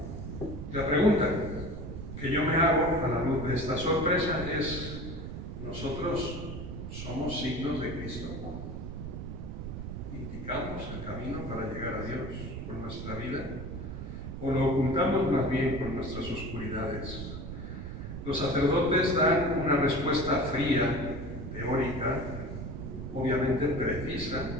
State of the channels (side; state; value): right; noise; rumble, 7 dB below the sound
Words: La pregunta que yo me hago a la luz de esta sorpresa es: ¿nosotros somos signos de Cristo? ¿Indicamos el camino para llegar a Dios con nuestra vida? ¿O lo ocultamos más bien con nuestras oscuridades? Los sacerdotes dan una respuesta fría, teórica, obviamente precisa,